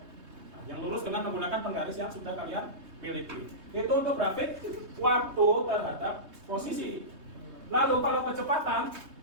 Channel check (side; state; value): left; late; 3.2 ms